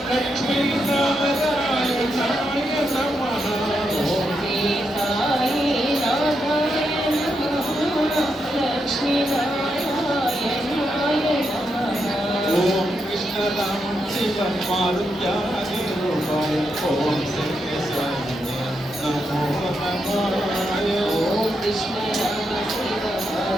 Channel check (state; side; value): normal; both; correlation 0.83